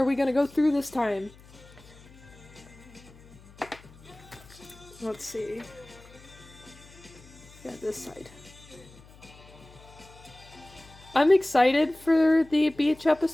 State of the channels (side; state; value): left; noise; hum, 22 dB below the sound